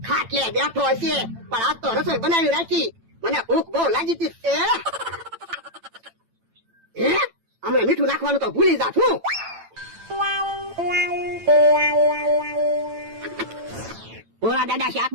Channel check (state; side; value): late; left; 8.9 ms